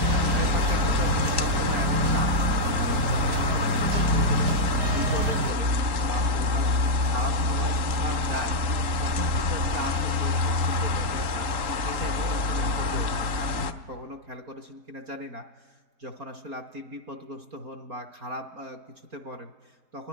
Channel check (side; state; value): left; late; 3.8 ms